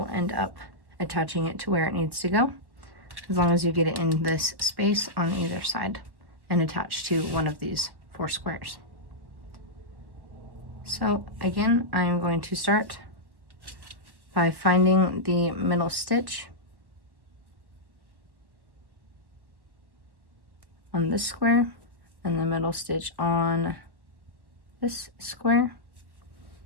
end up attaching it to where it needs to go, as long as you get it in this space on either side and attach to one of these 4 squares. So again, I am going to start by finding the middle stitch on this square and the middle stitch on this square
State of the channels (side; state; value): left; late; 1.1 ms